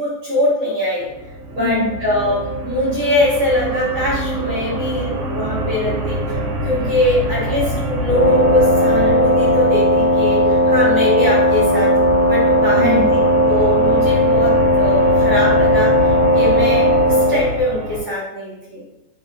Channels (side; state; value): left; late; 14 ms